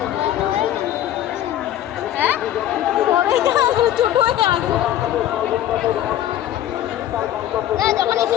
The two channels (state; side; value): quieter; right; 12.1 dB